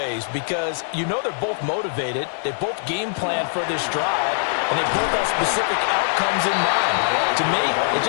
because you know they're both motivated. They both game plan for this drive, and they both have specific outcomes in mind. To me, it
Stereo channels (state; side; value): silent; right; 64 dB below the other